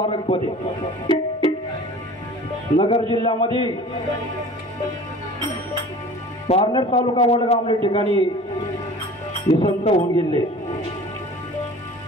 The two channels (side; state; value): both; normal; correlation 0.43